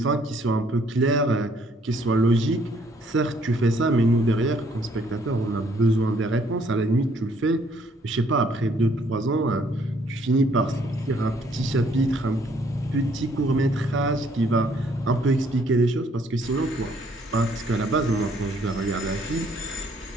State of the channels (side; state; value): both; normal; correlation 0.65